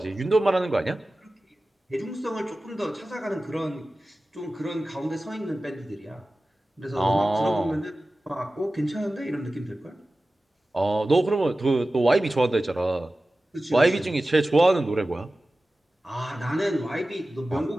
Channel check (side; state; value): both; normal; correlation 0.96